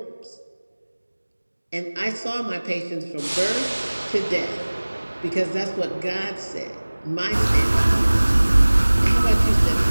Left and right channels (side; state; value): both; inverted; correlation -1.00